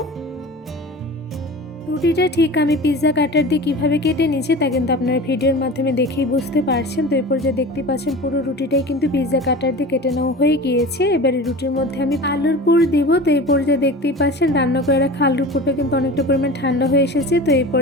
রুটিটা ঠিক আমি পিৎজা কাটার দিয়ে কীভাবে কেটে নিয়েছি তা কিন্তু আপনারা ভিডিওর মাধ্যমে দেখেই বুঝতে পারছেন। তো এরপর যে দেখতে পাচ্ছেন পুরো রুটিটাই কিন্তু পিৎজা কাটার দিয়ে কেটে নেওয়া হয়ে গিয়েছে। এবারে রুটির মধ্যে আমি আলুর পুর দিব। তো এই পর্যায়ে দেখতেই পাচ্ছেন রান্না করে রাখা আলুর পুরটা কিন্তু অনেকটা পরিমাণ ঠান্ডা হয়ে এসেছে। তো এই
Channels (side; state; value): both; normal; correlation 0.35